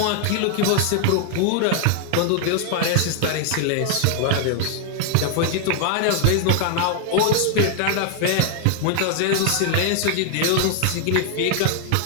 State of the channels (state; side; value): different; both; correlation 0.00